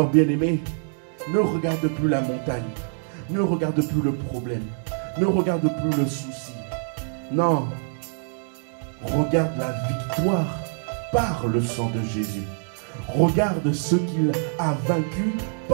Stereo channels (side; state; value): left; silent; digital silence